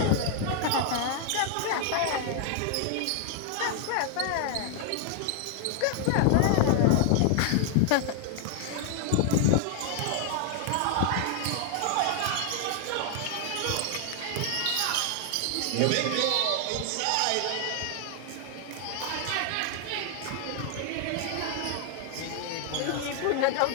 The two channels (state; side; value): different; both; correlation 0.00